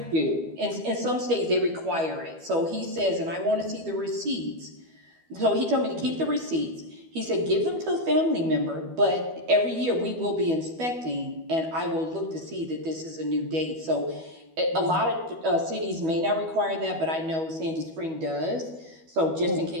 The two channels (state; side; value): late; left; 12 ms